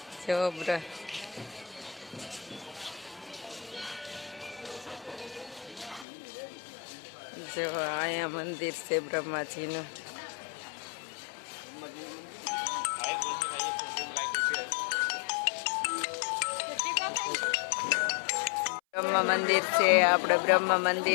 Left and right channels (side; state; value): right; drops out; at 6.1 s